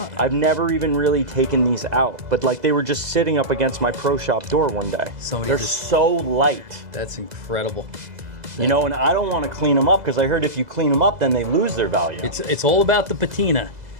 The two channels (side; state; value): left; late; 2.0 ms